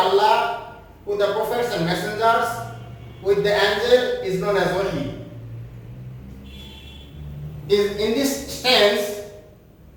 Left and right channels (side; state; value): both; identical; correlation 1.00